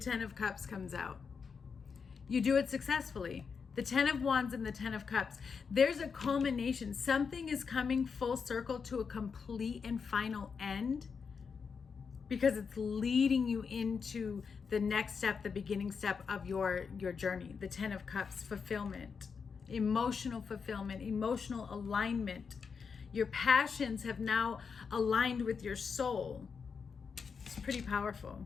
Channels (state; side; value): quieter; right; 5.8 dB